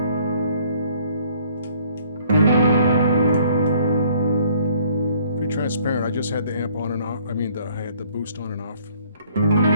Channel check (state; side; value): inverted; both; correlation -0.60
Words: Pretty transparent. I just had the amp on and off. I had the boost on and off.